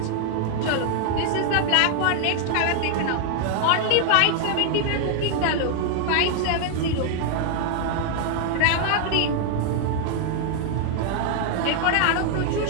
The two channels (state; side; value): different; both; correlation 0.00